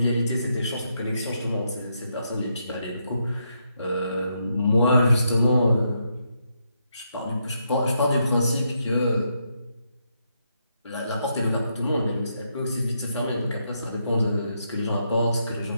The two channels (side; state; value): both; inverted; correlation -0.79